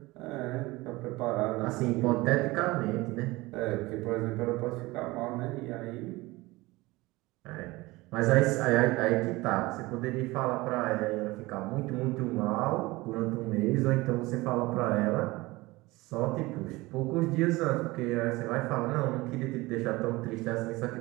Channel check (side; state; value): left; quieter; 21.1 dB